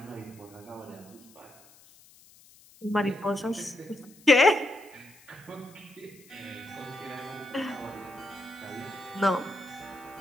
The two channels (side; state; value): left; noise; hiss, 25 dB below the sound